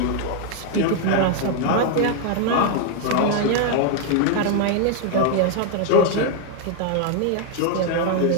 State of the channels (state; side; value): different; both; correlation 0.00